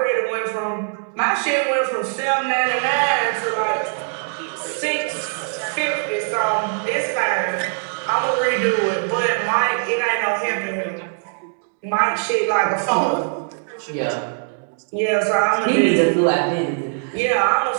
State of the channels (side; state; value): left; silent; digital silence